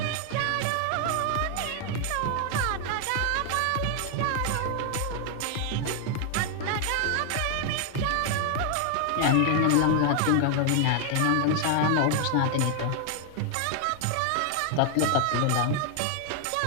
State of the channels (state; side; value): different; both; correlation 0.00